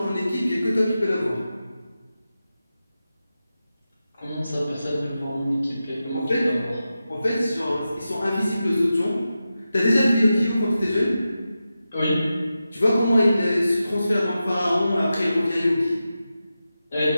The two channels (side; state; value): both; inverted; correlation -0.92